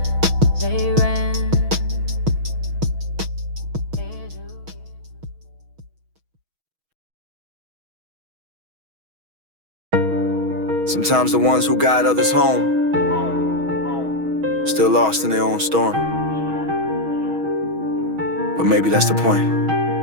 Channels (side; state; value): left; late; 6.3 ms